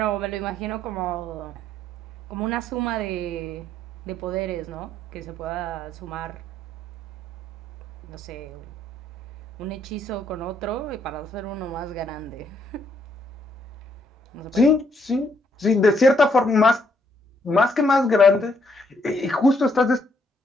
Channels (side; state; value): both; normal; correlation 0.71